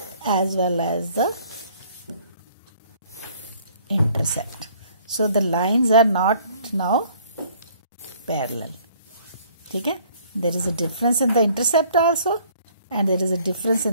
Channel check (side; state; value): both; inverted; correlation -0.58